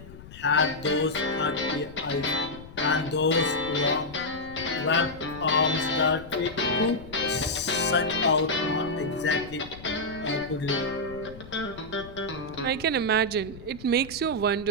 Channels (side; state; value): left; noise; rumble, 17 dB below the sound